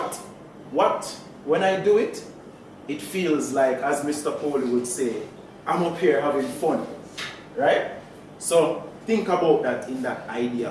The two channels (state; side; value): identical; both; correlation 1.00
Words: when I do it, it feels like, as Mr. Coley would say, I'm up here having fun, right? So think about that in that idea